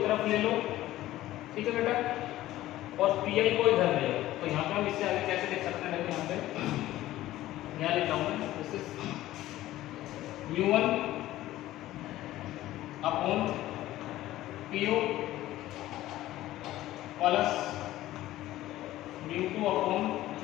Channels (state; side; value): quieter; right; 15.2 dB